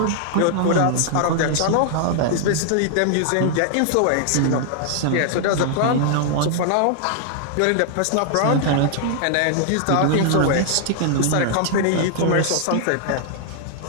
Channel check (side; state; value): both; different; correlation -0.01